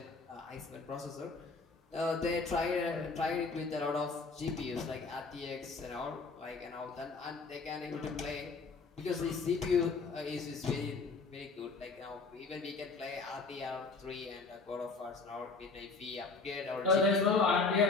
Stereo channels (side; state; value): right; quieter; 4.1 dB